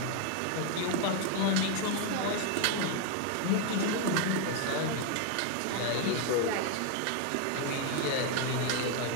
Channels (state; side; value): different; both; correlation 0.01